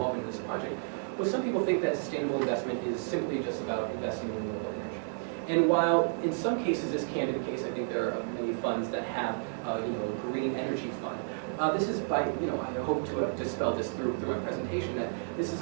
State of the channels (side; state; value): left; silent; digital silence